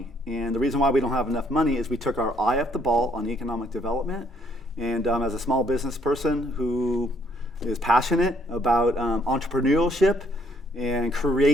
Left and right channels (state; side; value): normal; both; correlation 0.67